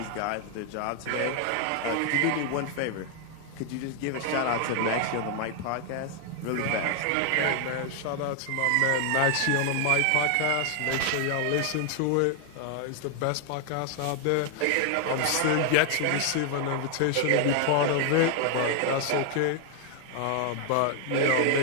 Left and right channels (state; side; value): different; both; correlation 0.00